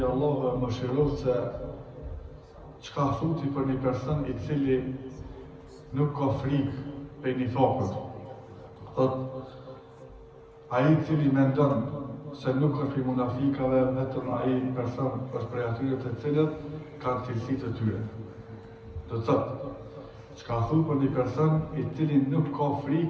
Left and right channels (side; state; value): both; identical; correlation 1.00